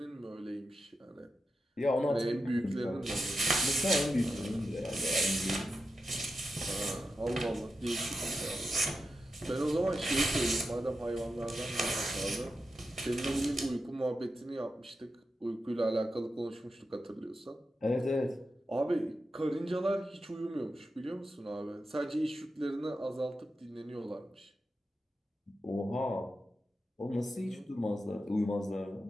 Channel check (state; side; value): normal; both; correlation 0.89